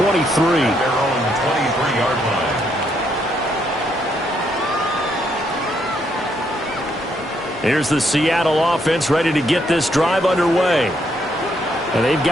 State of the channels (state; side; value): normal; both; correlation 0.74